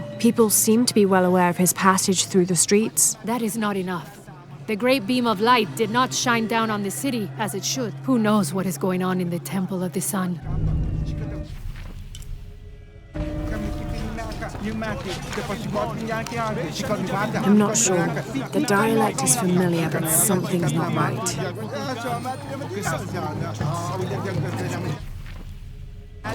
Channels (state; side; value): identical; both; correlation 1.00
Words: People seem to be well aware of his passage through the streets. That is not enough. The great beam of light did not shine down on the city as it should. Who knows what is going on in the Temple of the Sun? I'm not sure. The dialect is familiar, but something's not right.